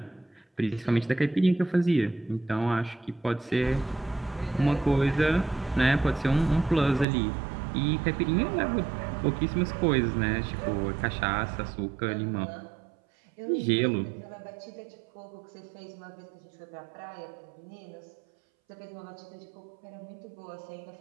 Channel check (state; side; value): drops out; left; at 7.1 s